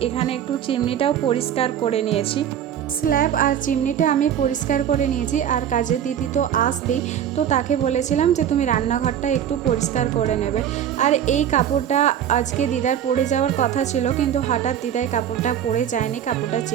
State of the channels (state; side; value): quieter; left; 9.7 dB